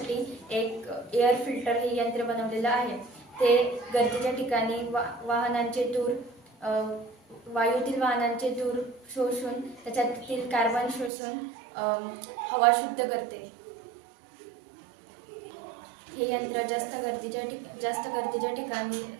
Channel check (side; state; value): left; drops out; at 11.1 s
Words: एक एअर फिल्टर हे यंत्र बनवलेलं आहे. ते गरजेच्या ठिकाणी वायूतील वाहनांचे धूर शोषून त्याच्यातील कार्बन शोषून हवा शुद्ध करते. हे यंत्र जास्त गर्दीच्या